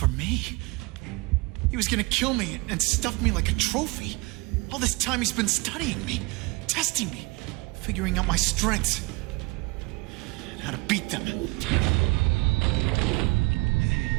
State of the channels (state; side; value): quieter; left; 25.5 dB